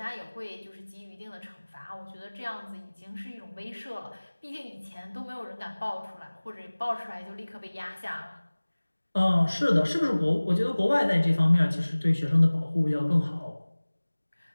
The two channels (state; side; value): inverted; both; correlation -1.00